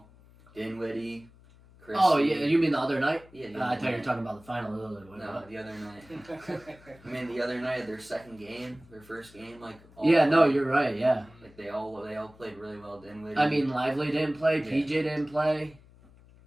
Dinwiddie, Chris. Oh, yeah, you mean the other night? Yeah. I thought you were talking about the final. No, the other night. I mean, the other night, their second game, their first game, like. Yeah, no, you're right, yeah. Like they all played really well. Dinwiddie. I mean, Lively didn't play, Yeah. PJ didn't play,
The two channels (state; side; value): noise; left; hum, 25 dB below the sound